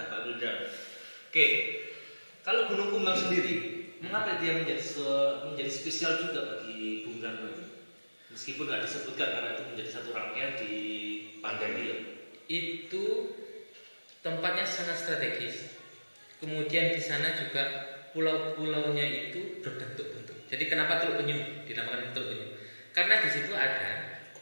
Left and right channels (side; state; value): both; inverted; correlation -1.00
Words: Pak Gulda. Oke, kalau Gunung Kumbang sendiri, mengapa dia menjadi spesial juga bagi Bung Karno ini? Meskipun nggak disebutkan karena itu menjadi satu rangkaian di pandemi ya. Itu tempatnya sangat strategis. Kemudian di sana juga pulau-pulaunya itu berbentuk-bentuk. Jadi kenapa Teluk Penyu dinamakan Teluk Penyu? Karena di situ ada